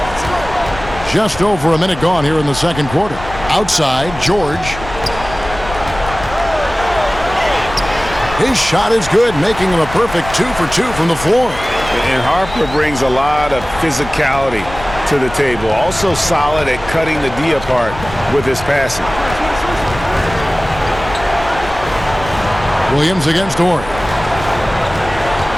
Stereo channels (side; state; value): left; noise; rumble, 13 dB below the sound